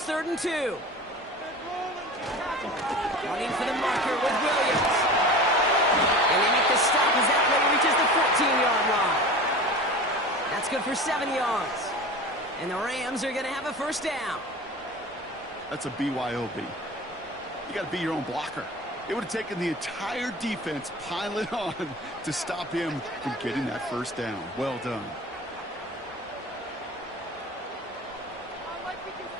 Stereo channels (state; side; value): normal; both; correlation 0.35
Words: third and 2. Running for the marker with Williams. And they make the stop as that play reaches the 14-yard line. That's good for 7 yards. And the Rams are going to have a first down. That's a BYOB. You got to be your own blocker. It would have taken the entire defense piling on to stop him from getting that first down. Well done.